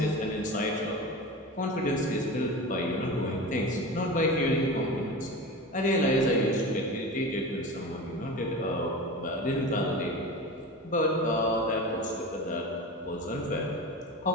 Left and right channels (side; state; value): both; normal; correlation 0.29